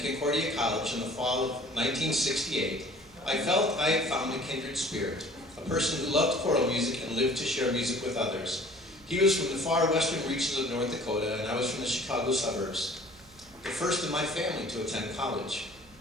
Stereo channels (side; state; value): right; noise; hum, 26 dB below the sound